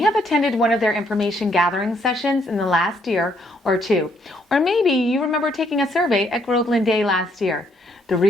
have attended one of their information gathering sessions in the last year or two, or maybe you remember taking a survey at Groveland Day last year. The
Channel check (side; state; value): both; normal; correlation 0.70